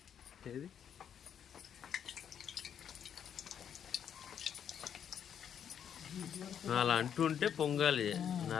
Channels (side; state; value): right; quieter; 8.6 dB